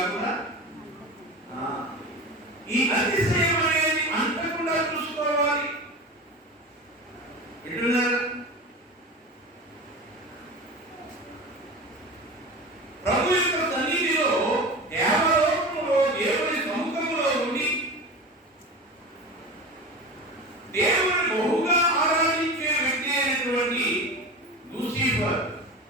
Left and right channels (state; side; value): normal; both; correlation 0.30